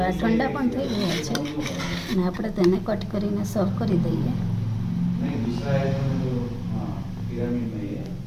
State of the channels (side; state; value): both; identical; correlation 1.00